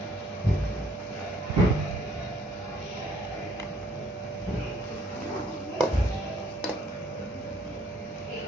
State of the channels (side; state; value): both; normal; correlation 0.63